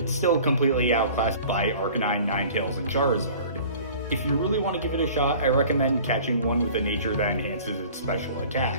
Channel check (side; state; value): both; inverted; correlation -0.46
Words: still completely outclassed by Arcanine, Ninetales, and Charizard. If you really want to give it a shot, I recommend catching one with a nature that enhances its special